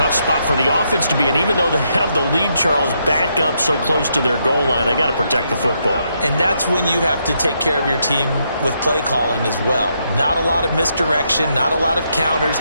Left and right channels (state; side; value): inverted; both; correlation -0.78